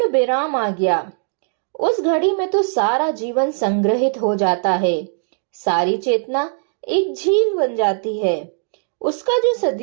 विराम आ गया। उस घड़ी में तो सारा जीवन संग्रहित हो जाता है, सारी चेतना एक झील बन जाती है। उसका जो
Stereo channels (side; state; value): left; silent; 66 dB below the other